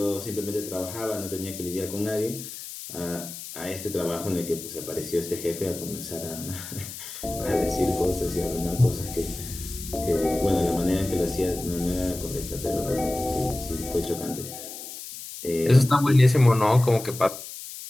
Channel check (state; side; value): noise; left; hiss, 11 dB below the sound